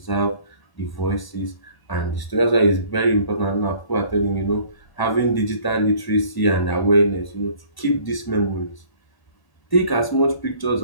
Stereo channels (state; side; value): late; right; 1.0 ms